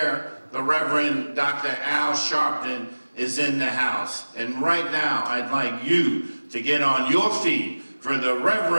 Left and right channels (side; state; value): both; inverted; correlation -1.00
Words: The Reverend Dr. Al Sharpton is in the house. And right now, I'd like you to get on your feet for the